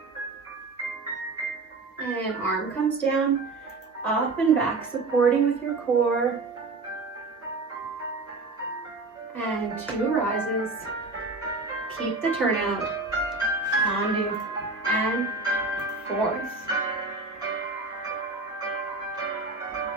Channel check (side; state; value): left; quieter; 3.6 dB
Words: And arm comes down, up and back, supporting with your core. And 2 rises. Keep the turnout. Tendu, and 4th.